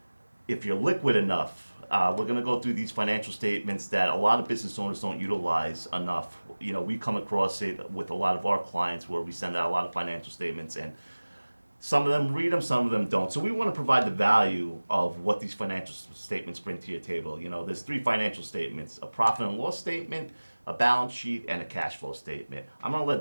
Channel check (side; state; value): both; inverted; correlation -1.00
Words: if you're liquid enough. We're going to go through these financial statements that a lot of business owners don't utilize enough. You know, we come across it with a lot of our clients where we send out a lot of financial statements, and some of them read them, some of them don't. So we want to provide the value of what these financial statements bring to your table. You know, there's three financial statements: a profit and loss statement, a balance sheet, and a cash flow statement. I'm going to